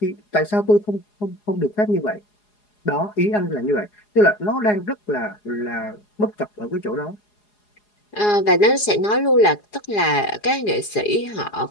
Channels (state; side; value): late; right; 4.8 ms